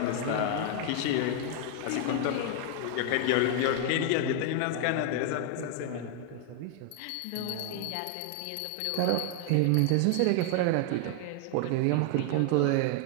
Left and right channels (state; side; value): different; both; correlation 0.00